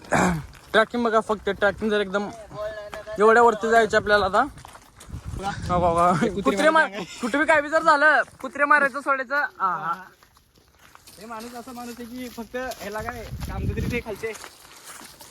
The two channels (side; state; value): both; identical; correlation 1.00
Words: ट्रॅकिंग बघा, फक्त ट्रॅकिंग जर एकदम एवढ्या वरती जायचं आपल्याला. आता कुत्रे कुठे बी काय बी जर झालं, कुत्रे मारायचं सोडायचं. हे माणूस असा माणूस आहे की फक्त ह्याला काय काम तरी ते खायचे